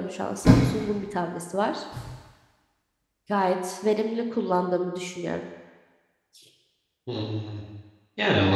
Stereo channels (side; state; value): both; identical; correlation 1.00